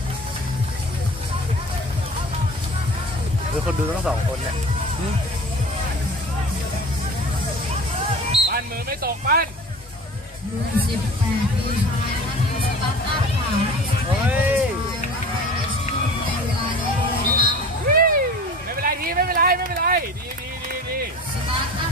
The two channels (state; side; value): normal; both; correlation 0.40